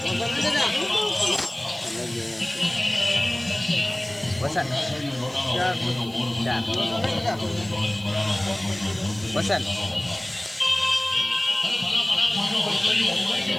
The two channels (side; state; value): right; noise; hiss, 23 dB below the sound